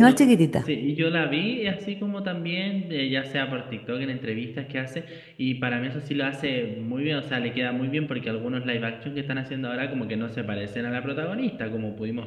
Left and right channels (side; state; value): both; identical; correlation 1.00